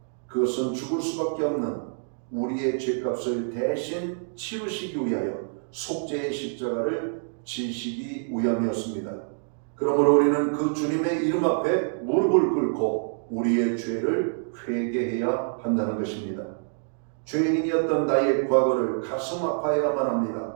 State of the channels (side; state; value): left; silent; digital silence